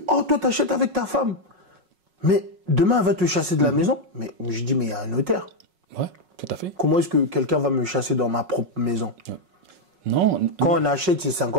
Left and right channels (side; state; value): left; late; 5.4 ms